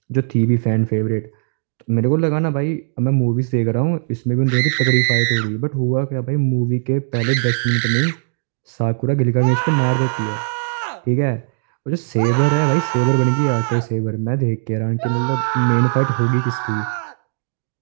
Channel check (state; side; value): silent; left; digital silence